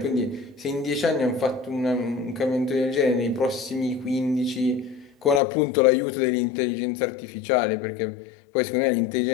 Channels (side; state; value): right; drops out; at 5.4 s